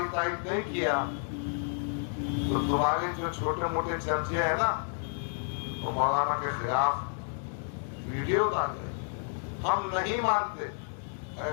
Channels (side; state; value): right; silent; 57 dB below the other